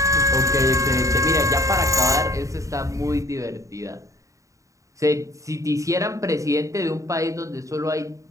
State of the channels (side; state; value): left; late; 0.16 ms